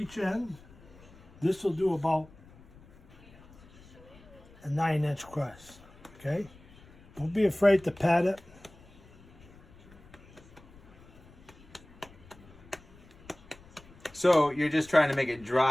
in. This will do about a 9-inch crust. Okay. Don't be afraid to pat it. So you're just trying to make it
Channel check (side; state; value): left; noise; rumble, 23 dB below the sound